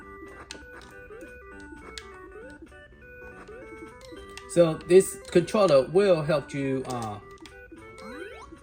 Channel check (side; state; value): both; identical; correlation 1.00